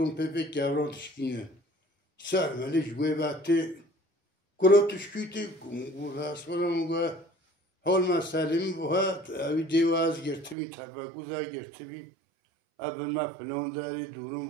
پپه کوران تشکینه سرمله جوه وقتی کرا تشکیتی گو راست کنم گو حال مسئله باید اوی دیواز گرتمی تفکوزه گرتمی اول ما فلان داری دورم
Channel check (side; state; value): left; drops out; at 10.6 s